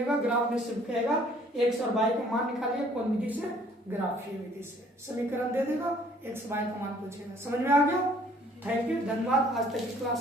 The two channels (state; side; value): normal; both; correlation 0.58